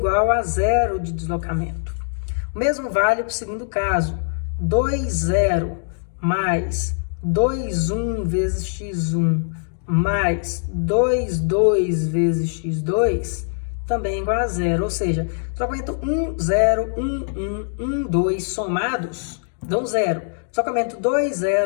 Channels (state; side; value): silent; right; digital silence